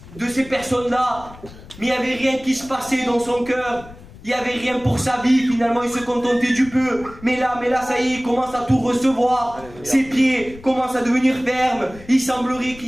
de ces personnes-là. Mais il n'y avait rien qui se passait dans son cœur. Il n'y avait rien pour sa vie, finalement il se contentait du peu. Mais là, ça y est, il commence à tout recevoir. Ses pieds commencent à devenir fermes. Il semblerait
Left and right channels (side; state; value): left; noise; rumble, 19 dB below the sound